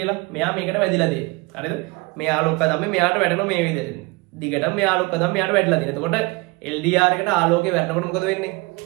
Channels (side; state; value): left; quieter; 25.2 dB